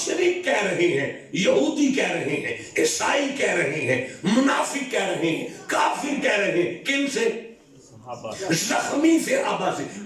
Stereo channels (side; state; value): both; identical; correlation 1.00